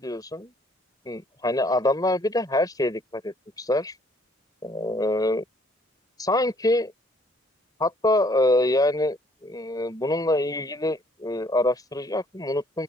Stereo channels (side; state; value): both; normal; correlation 0.63